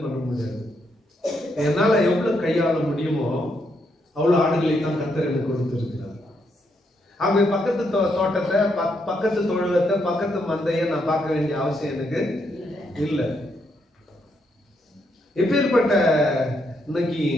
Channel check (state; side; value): normal; both; correlation 0.77